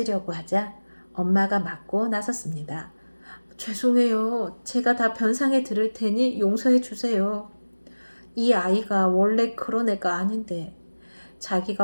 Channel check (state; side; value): inverted; both; correlation -1.00